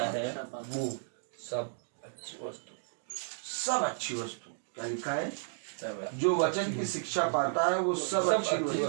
है वो सब अच्छी वस्तु। सब अच्छी वस्तु, क्या लिखा है? सब जो वचन की शिक्षा पाता है वो सब अच्छी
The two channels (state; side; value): silent; left; digital silence